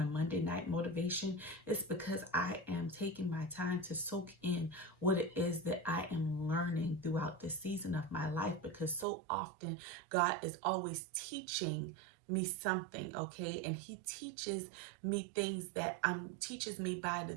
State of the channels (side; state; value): left; drops out; at 9.1 s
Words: a Monday night motivation, it's because I am taking my time to soak in what it is that I am learning throughout this season of my life, because so often God is always teaching me something, okay? And he teaches me things that teaches me by the